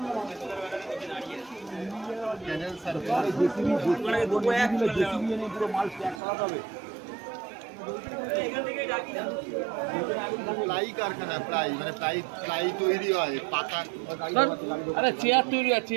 প্লাই কারখানা, প্লাই তৈরি হয়, পাতা। আরে চেয়ার তৈরি হয়,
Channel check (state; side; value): drops out; left; at 6.2 s